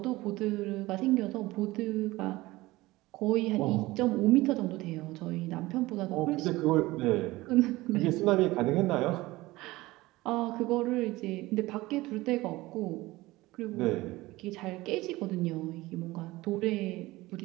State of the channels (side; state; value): left; quieter; 19.3 dB